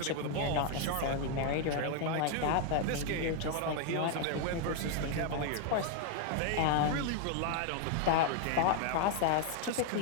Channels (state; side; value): different; both; correlation 0.00